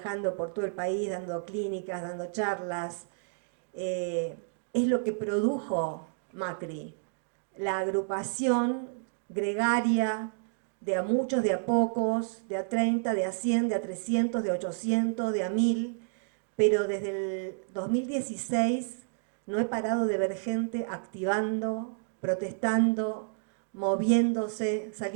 por todo el país, dando clínicas, dando charlas, es lo que produjo Macri, la agrupación gregaria de a muchos, de a pocos, de a 30, de a 100, de a 300, de a 800, de a 1000, pero desde el 2016 no he parado de ver gente activando, protestando, moviéndose,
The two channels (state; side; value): silent; left; digital silence